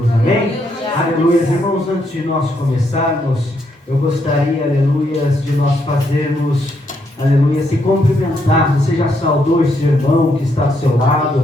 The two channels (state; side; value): normal; both; correlation 0.76